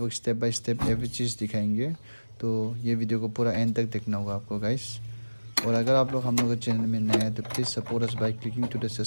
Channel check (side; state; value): both; inverted; correlation -1.00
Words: स्टेप बाय स्टेप एवरी चीज़ दिखाएंगे, तो ये वीडियो को पूरा एंड तक देखना होगा आपको गाइस। और अगर आप लोग हम लोग के चैनल में नए हैं तो please support us by clicking to the